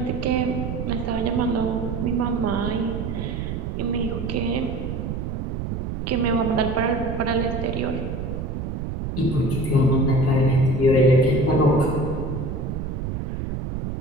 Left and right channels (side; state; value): right; noise; rumble, 4 dB below the sound